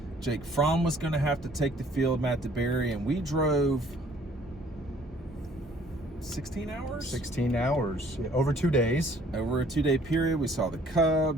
Jake Fromm was going to have to take the field, Matt DeBerry, and we drove 16 hours? 16 hours, over 2 days. Over a 2-day period, we saw the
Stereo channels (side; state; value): both; normal; correlation 0.58